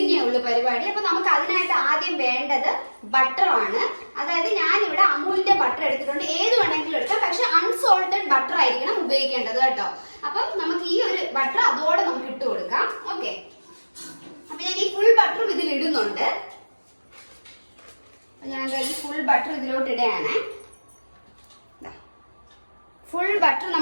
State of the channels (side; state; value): both; inverted; correlation -1.00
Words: ഉള്ളു പരിപാടി. അപ്പൊ നമുക്ക് അതിനായിട്ട് ആദ്യം വേണ്ടത് ബട്ടറാണ്. അതായത് ഞാനിവിടെ അമൂലിന്റെ ബട്ടർ എടുത്തിട്ടുണ്ട്. ഏത് വേണമെങ്കിലും എടുക്കാം, പക്ഷെ അൺസോൾട്ടഡ് ബട്ടർ ആയിരിക്കണം ഉപയോഗിക്കേണ്ടത് കേട്ടോ. അപ്പം നമുക്ക് ഈ ഒരു ബട്ടർ അതോടെ നമുക്ക് ഇട്ട് കൊടുക്കാം. ഓക്കെ, അപ്പൊ ഞാൻ ഈ ഫുൾ ബട്ടറും ഇതിൽ ഇടുന്നുണ്ട്. ഞാൻ ഈ ഫുൾ ബട്ടർ ഇതിലോട്ട് ഇടുകയാണ്. ഫുൾ ബട്ടർ